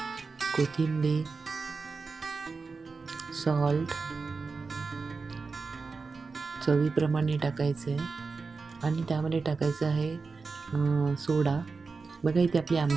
कोथिंबीर, सॉल्ट चवीप्रमाणे टाकायचं आहे आणि त्यामध्ये टाकायचं आहे सोडा. बघा इथे आपली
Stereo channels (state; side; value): quieter; left; 4.4 dB